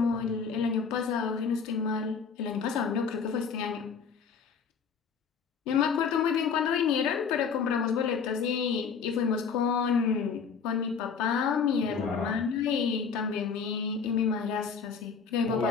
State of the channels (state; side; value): quieter; right; 6.0 dB